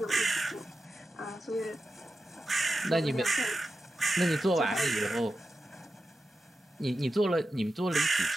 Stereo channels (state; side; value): normal; both; correlation 0.91